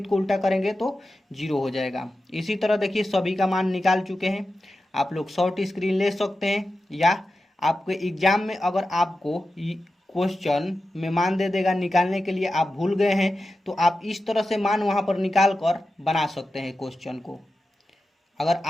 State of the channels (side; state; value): both; normal; correlation 0.92